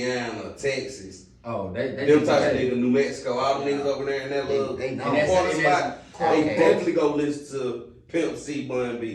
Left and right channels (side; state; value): both; identical; correlation 1.00